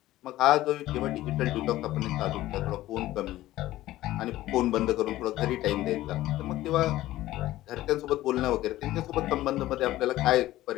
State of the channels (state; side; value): quieter; right; 15.6 dB